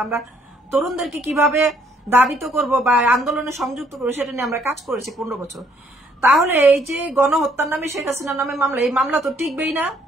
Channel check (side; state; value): both; normal; correlation 0.67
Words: আমরা তরুণদেরকে কিভাবে দাবিত করব বা আন্দোলনে সংযুক্ত করবো, সেটা নিয়ে আমরা কাজ করেছি 15 বছর। তাহলে এই যে গণহত্যার নামে শেখ হাসিনার নামে মামলা, এই মামলা তো টিকবেই না।